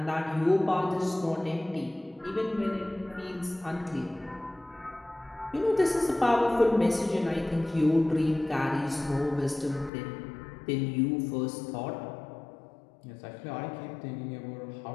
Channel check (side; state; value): right; drops out; at 9.9 s